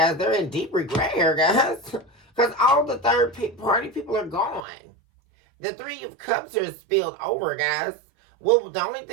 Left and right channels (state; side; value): drops out; left; at 4.7 s